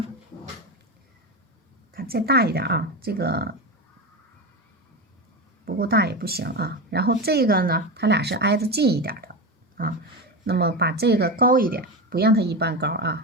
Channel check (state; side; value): normal; both; correlation 0.20